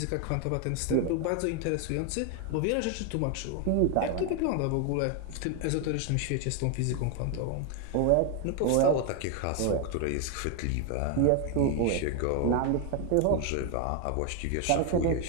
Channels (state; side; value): different; both; correlation 0.01